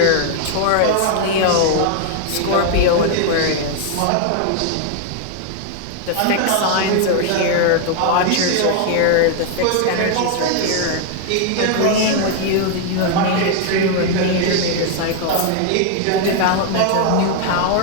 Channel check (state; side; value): different; both; correlation 0.00